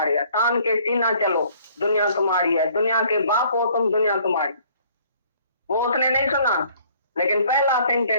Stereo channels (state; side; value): inverted; both; correlation -0.59